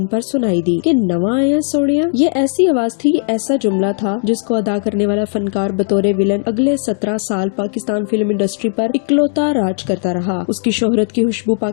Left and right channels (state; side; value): silent; right; digital silence